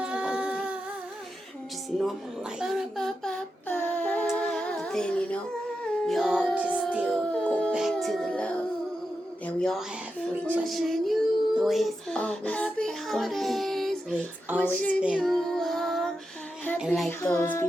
of other things. Just normal life. But then, we all just still go back to the love that we all have for each other. The way it's always going to be. The way it's always been. And like those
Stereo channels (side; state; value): both; normal; correlation 0.88